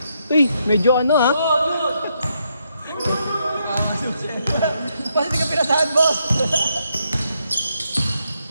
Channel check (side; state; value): both; inverted; correlation -0.78